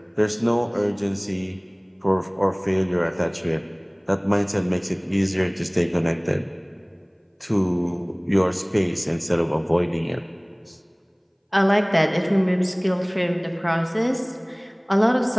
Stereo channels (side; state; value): both; identical; correlation 1.00